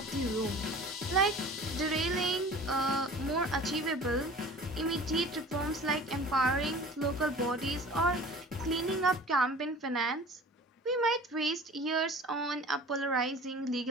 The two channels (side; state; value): both; normal; correlation 0.43